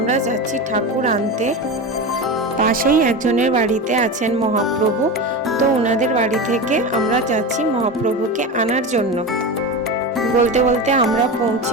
যাচ্ছি ঠাকুর আনতে। পাশেই একজনের বাড়িতে আছেন মহাপ্রভু, তো ওনাদের বাড়ি থেকে আমরা যাচ্ছি মহাপ্রভুকে আনার জন্য। বলতে বলতে আমরা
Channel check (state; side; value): normal; both; correlation 0.23